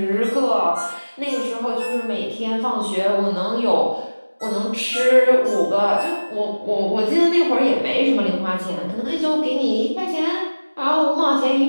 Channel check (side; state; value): both; inverted; correlation -1.00